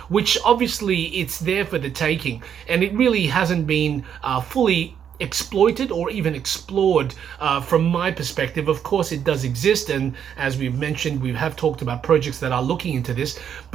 which obviously it's there for the taking, and it really hasn't been fully exploited or even explored from my perspective. Of course it does exist, and as we've mentioned, we have talked about projects that are looking into this,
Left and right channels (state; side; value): quieter; left; 8.5 dB